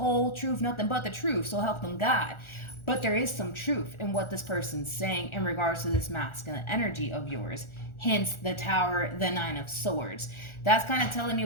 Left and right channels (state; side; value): late; right; 1.4 ms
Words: truth, nothing but the truth, so help them God. But there is some truth in what this person's saying in regards to this masculine energy of yours. Hence the Tower, the Nine of Swords. That's kind of telling me